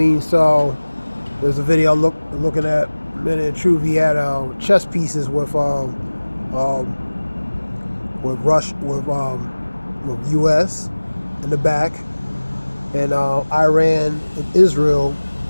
So there's a video looking at Men in Truth. He had chess pieces with U.S. in the back, and Iran and Israel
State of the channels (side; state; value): both; inverted; correlation -1.00